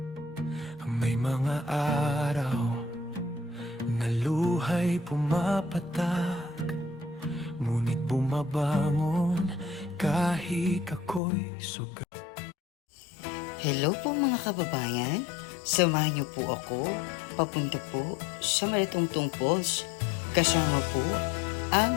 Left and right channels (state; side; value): drops out; right; at 11.2 s